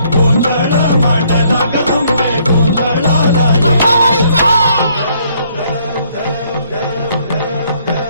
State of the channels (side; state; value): both; inverted; correlation -0.66